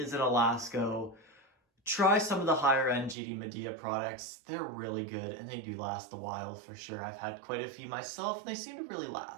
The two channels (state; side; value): drops out; left; at 3.2 s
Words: a Lasko, try some of the higher-end GD Medea products. They're really good, and they do last a while for sure. I've had quite a few myself, and they seem to really